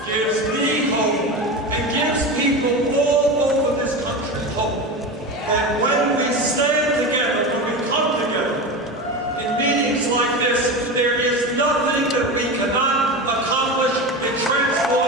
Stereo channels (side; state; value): both; normal; correlation 0.24